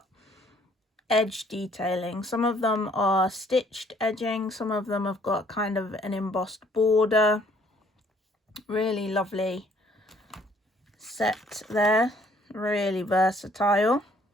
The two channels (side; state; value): both; normal; correlation 0.62